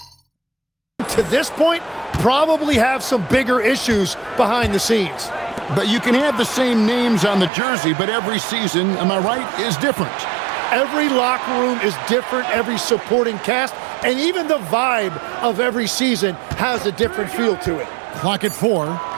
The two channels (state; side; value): drops out; left; at 7.5 s